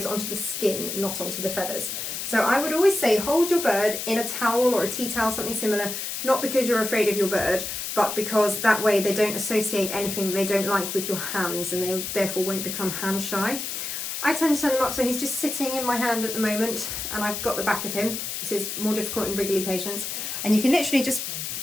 onto the skin, not onto the feathers. So I would always say hold your bird in a towel or a tea towel, something similar, not because you're afraid of your bird, but because that way they don't associate anything they don't like with your hands, and they therefore won't become hand shy. I tend to turn them up so he's just sitting in my hand at the moment, and I've got the back of him. This is more difficult in wriggly patients. And you can literally just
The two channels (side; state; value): left; noise; hiss, 5 dB below the sound